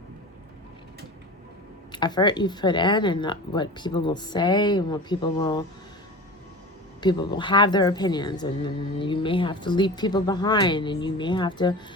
effort you've put in, and what people will say, and what people will have their opinions, and you may have to leave people behind, and you may have to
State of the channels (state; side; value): normal; both; correlation 0.33